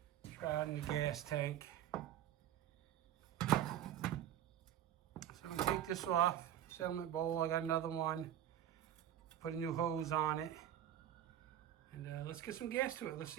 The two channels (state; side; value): quieter; left; 11.0 dB